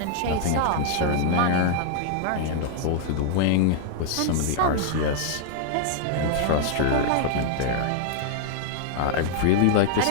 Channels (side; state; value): both; different; correlation 0.00